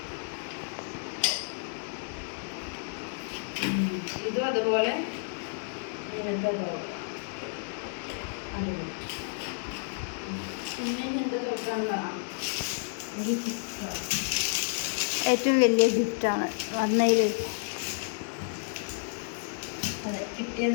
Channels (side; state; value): right; silent; digital silence